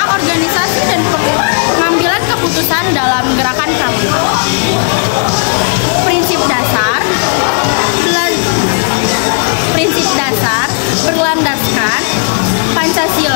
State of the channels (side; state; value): right; silent; digital silence